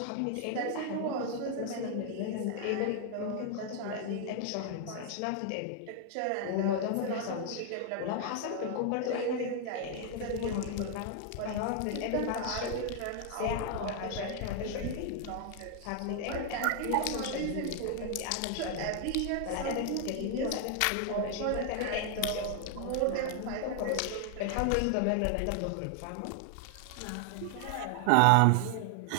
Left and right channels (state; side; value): different; both; correlation 0.00